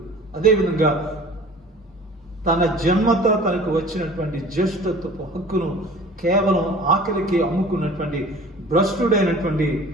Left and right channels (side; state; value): both; normal; correlation 0.45